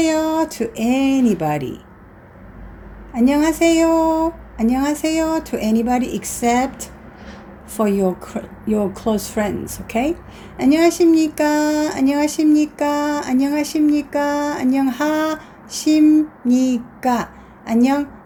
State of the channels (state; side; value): identical; both; correlation 1.00